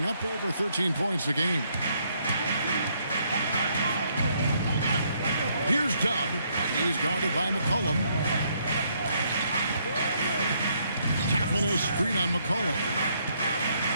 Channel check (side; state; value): both; inverted; correlation -0.71